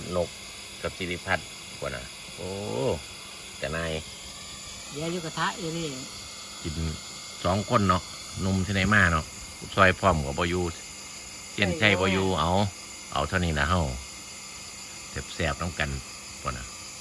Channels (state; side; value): identical; both; correlation 1.00